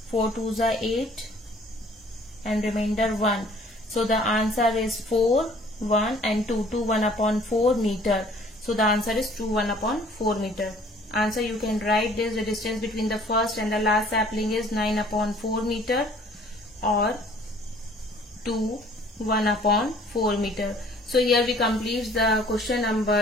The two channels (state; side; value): normal; both; correlation 0.55